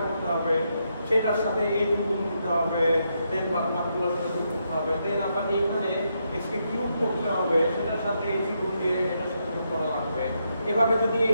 করতে হবে, সেটার সাথে a2 গুণ দিতে হবে, দেন বাকিগুলোর সাথে যোগ করতে হবে, দেন আবার এইখানে x কে কিউব করতে হবে, সেটার সাথে a3 গুণ দিয়ে এটার সাথে যোগ করা লাগবে। এভাবে যদি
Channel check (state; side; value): inverted; both; correlation -0.80